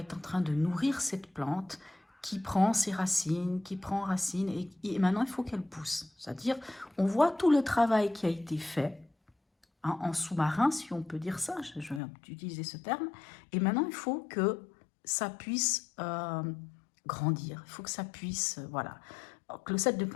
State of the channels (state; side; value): drops out; right; at 12.0 s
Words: en train de nourrir cette plante qui prend ses racines, qui prend racine, et maintenant il faut qu'elle pousse. C'est-à-dire, on voit tout le travail qui a été fait, hein, en sous-marin, si on peut dire ça, je vais utiliser ce terme, et maintenant il faut que ça puisse grandir, il faut que ça puisse, voilà. Donc, le 7 de